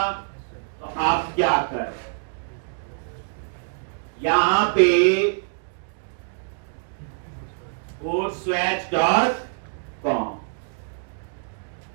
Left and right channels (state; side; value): silent; left; digital silence